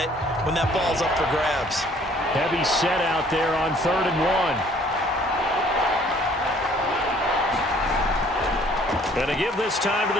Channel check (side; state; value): both; normal; correlation 0.58